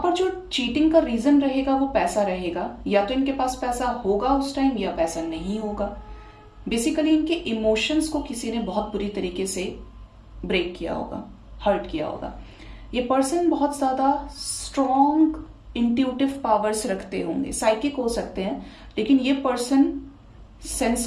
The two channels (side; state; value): both; identical; correlation 1.00